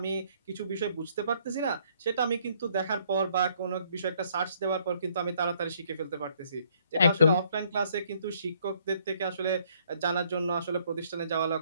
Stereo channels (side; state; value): both; inverted; correlation -0.65